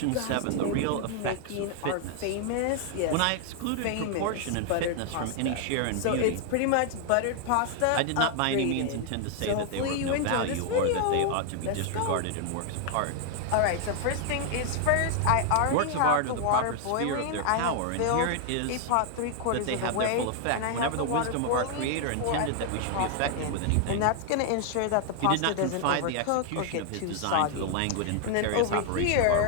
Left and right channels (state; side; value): different; both; correlation 0.00